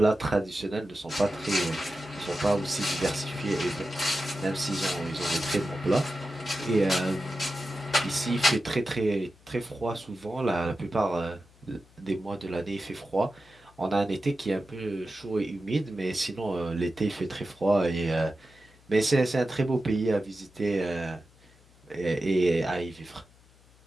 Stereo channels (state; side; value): noise; left; hum, 28 dB below the sound